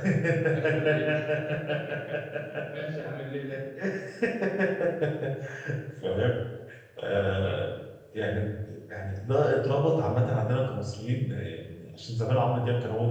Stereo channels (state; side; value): identical; both; correlation 1.00